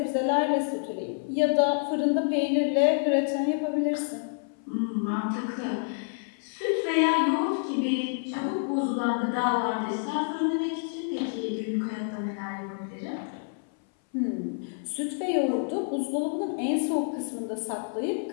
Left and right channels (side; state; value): right; silent; 59 dB below the other